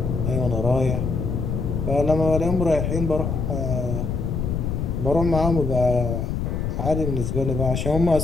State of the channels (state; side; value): noise; left; rumble, 2 dB below the sound